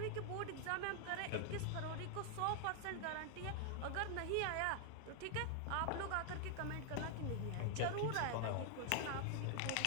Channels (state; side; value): different; both; correlation 0.00